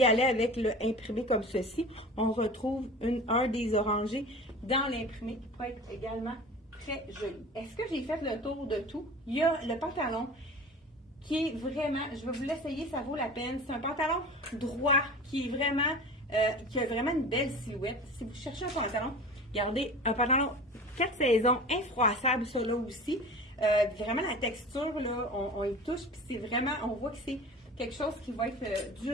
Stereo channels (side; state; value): both; normal; correlation 0.37